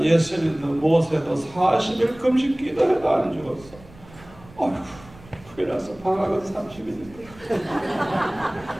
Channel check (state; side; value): noise; right; rumble, 22 dB below the sound